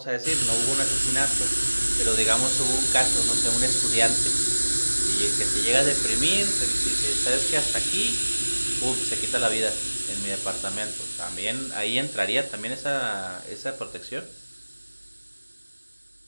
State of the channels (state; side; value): inverted; both; correlation -1.00